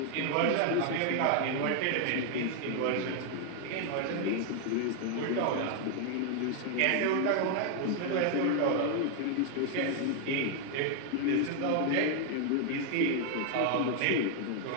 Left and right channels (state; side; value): different; both; correlation 0.00